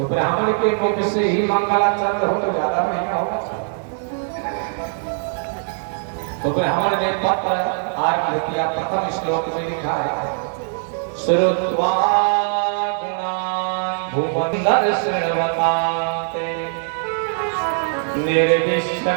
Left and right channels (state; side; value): silent; left; 64 dB below the other